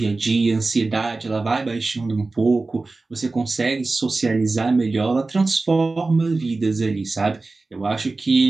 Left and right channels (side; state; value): left; quieter; 3.5 dB